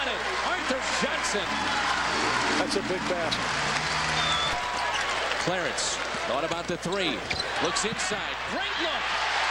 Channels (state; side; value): identical; both; correlation 1.00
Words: it. Arthur Johnson. That's a big basket. Clarence thought about the 3. Looks inside. Great look.